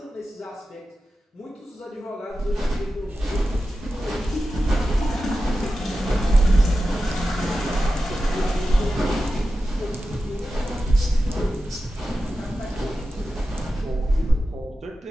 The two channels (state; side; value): normal; both; correlation 0.92